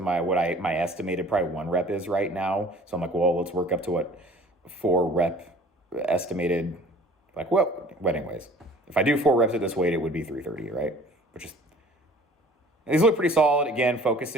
estimated probably 1 rep is right now. So I'm like, well, let's work up to what 4 rep estimated, like, well, anyways, if I do 4 reps at this weight, it would be 330, right? Which is, these look pretty solid. Again,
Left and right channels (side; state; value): both; normal; correlation 0.49